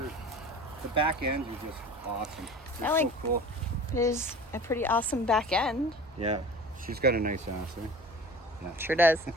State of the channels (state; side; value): normal; both; correlation 0.40